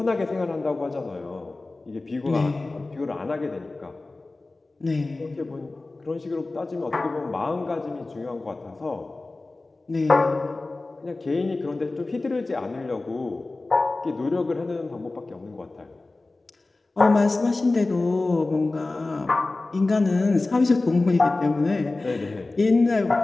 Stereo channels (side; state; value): right; quieter; 3.2 dB